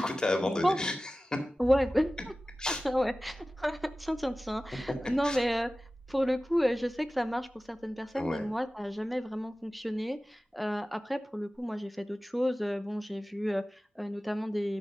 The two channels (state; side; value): normal; both; correlation 0.96